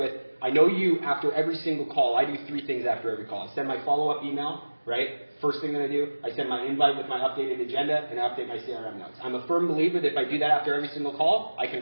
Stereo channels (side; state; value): both; inverted; correlation -1.00